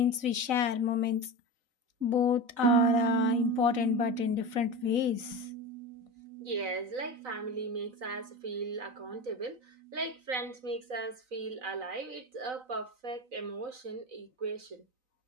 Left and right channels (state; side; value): late; left; 4.0 ms